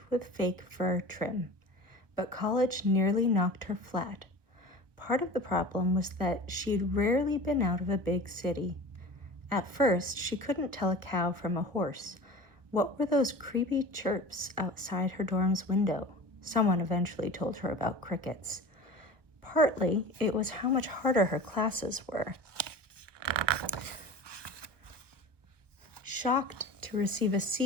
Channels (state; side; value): late; left; 1.0 ms